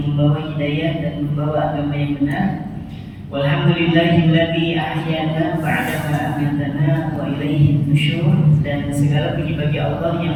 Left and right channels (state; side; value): identical; both; correlation 1.00